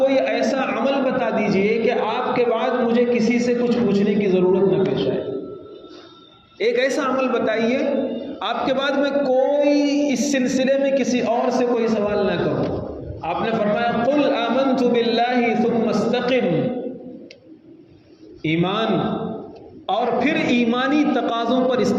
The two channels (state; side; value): identical; both; correlation 1.00